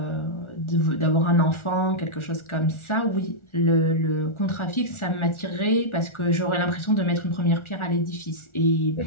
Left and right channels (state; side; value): late; right; 1.4 ms